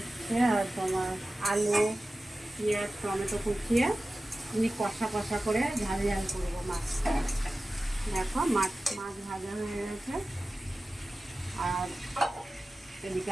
আর তোমার আলু, পেঁয়াজ, টমেটো কুচিয়ে আমি কষা কষা করে ঝাল ঝাল করবো মাছ। দেখো মাছ মাছ ভাজা হয়ে গেছে। আর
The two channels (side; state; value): both; normal; correlation 0.95